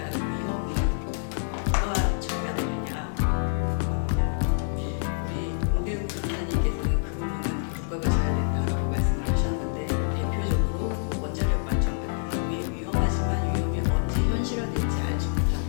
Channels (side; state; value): right; silent; digital silence